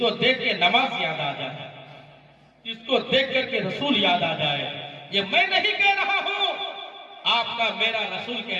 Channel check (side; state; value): both; identical; correlation 1.00